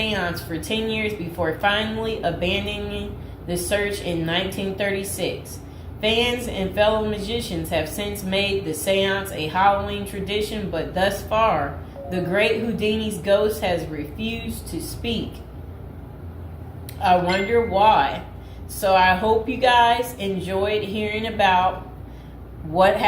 for 10 years before finally abandoning the search in 1936. Fans and fellow magicians have since made the seance a Halloween tradition, but thus far, the great Houdini's ghost has refused to speak. I wonder why. So I hope you guys enjoyed hearing about what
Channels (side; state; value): both; identical; correlation 1.00